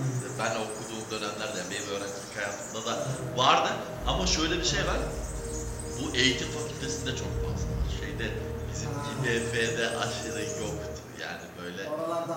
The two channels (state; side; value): identical; both; correlation 1.00